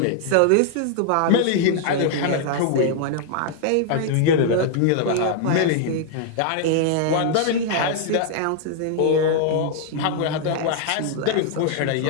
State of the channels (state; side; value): different; both; correlation -0.01